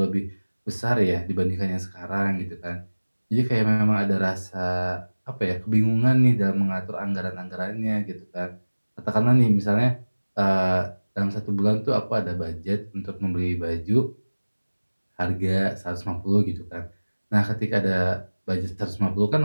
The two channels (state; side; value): inverted; both; correlation -1.00